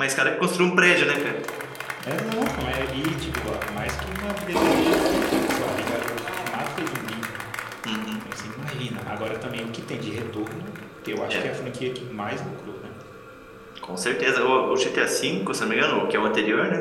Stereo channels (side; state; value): both; identical; correlation 1.00